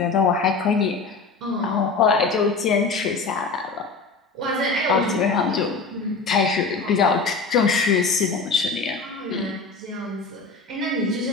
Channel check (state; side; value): quieter; right; 4.3 dB